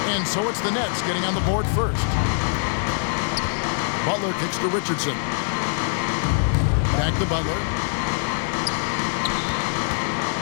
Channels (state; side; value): silent; right; 63 dB below the other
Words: And so it's the Nets getting on the board first. Butler kicks to Richardson. Back to Butler.